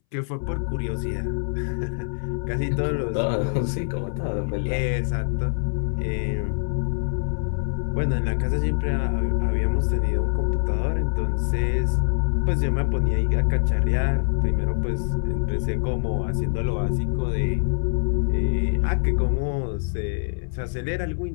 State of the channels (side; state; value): right; silent; 62 dB below the other